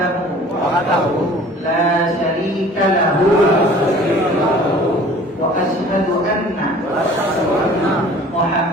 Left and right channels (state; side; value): normal; both; correlation 0.48